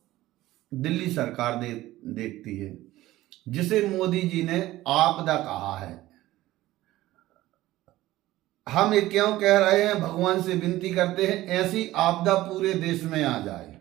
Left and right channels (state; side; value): quieter; left; 16.3 dB